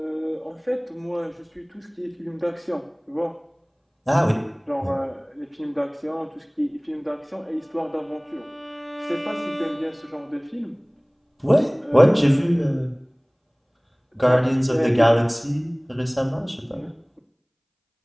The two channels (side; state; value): both; identical; correlation 1.00